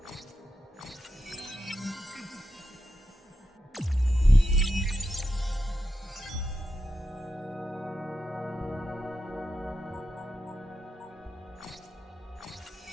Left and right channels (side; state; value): both; normal; correlation 0.88